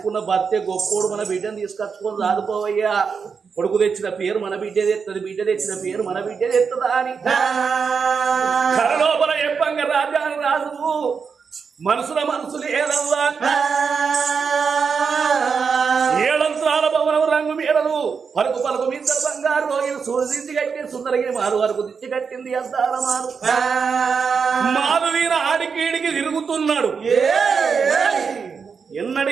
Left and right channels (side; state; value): left; quieter; 5.8 dB